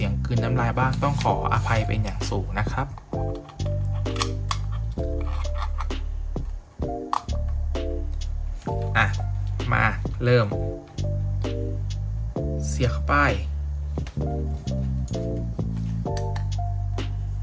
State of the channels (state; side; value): identical; both; correlation 1.00